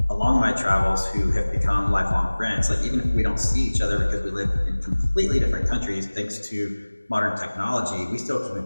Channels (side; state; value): both; inverted; correlation -1.00